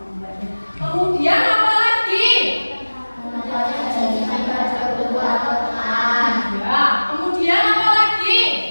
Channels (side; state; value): both; inverted; correlation -1.00